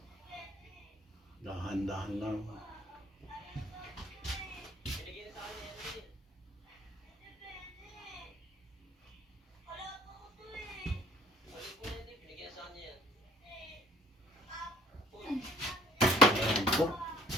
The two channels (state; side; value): normal; both; correlation 0.55